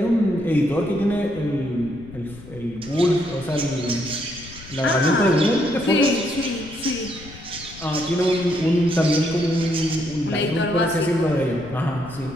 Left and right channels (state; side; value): noise; left; rumble, 18 dB below the sound